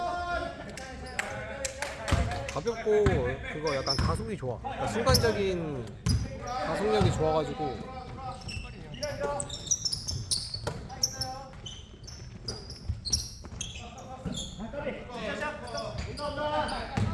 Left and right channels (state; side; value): identical; both; correlation 1.00